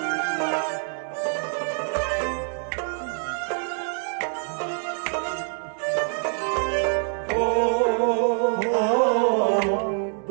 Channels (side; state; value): left; silent; 58 dB below the other